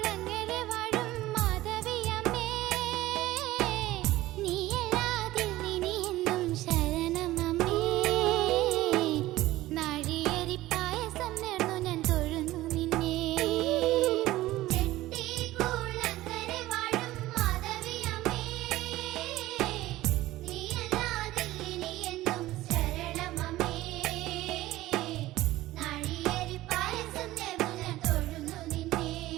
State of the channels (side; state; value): left; quieter; 16.7 dB